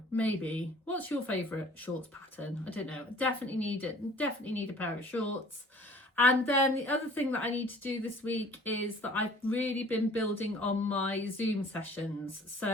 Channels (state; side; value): normal; both; correlation 0.51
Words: maybe. What's your favourite shorts pattern? I don't know. Definitely need it. Definitely need a pair of shorts. And then the other thing that I need to do this week is that I've really been building on my Zoom sessions.